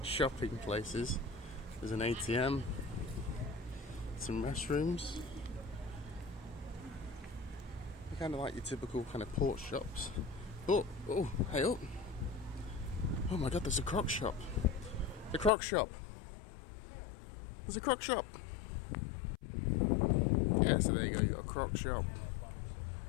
shopping places. There's an ATM, some restrooms. They're kind of like your typical kind of port shops. Oh, hey up! Oh my God, there's a Croc shop. The Croc shop. There's a Croc shop. Yeah, so there you go. You got a Croc shop.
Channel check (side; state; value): right; drops out; at 15.5 s